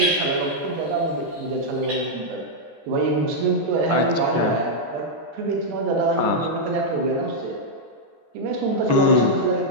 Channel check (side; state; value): left; late; 14 ms